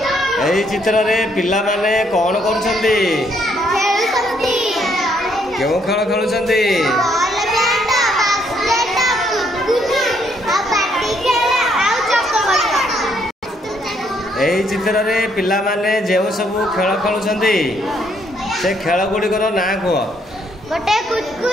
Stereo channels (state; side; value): normal; both; correlation 0.70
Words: एही चित्र रे पिला माने कोन करूछंती? खेलुछंती। केउ खेल खेलुछंती? बॉल बैट बास्केट कुतकुत आ बैटिंग खेल आउ चक्क गड़ाई। एही चित्र रे पिला माने जेउ सब खेल खेलुछंती से खेल गुड़िकर ना कह? गोटे